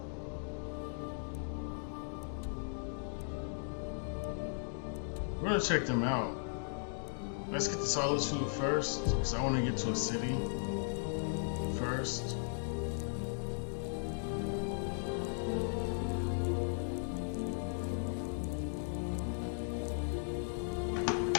We're gonna check them out. Let's get to Solitude first, because I want to get to a city first.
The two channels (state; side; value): silent; right; digital silence